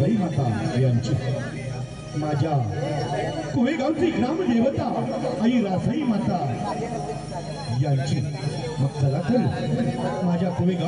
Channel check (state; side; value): identical; both; correlation 1.00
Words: माता यांची, माझ्या कोळेगावची ग्रामदेवता आई रासाई माता यांची. मग चला तर माझ्या